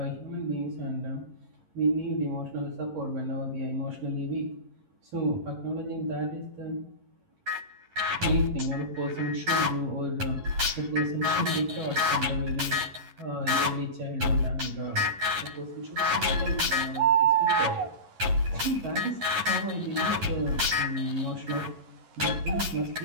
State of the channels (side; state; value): left; late; 11 ms